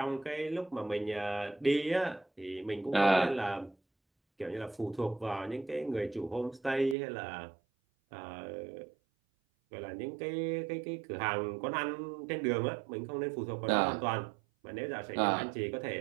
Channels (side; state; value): left; drops out; at 7.0 s